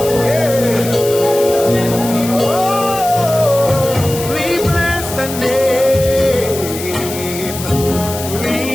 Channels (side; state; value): left; noise; hiss, 9 dB below the sound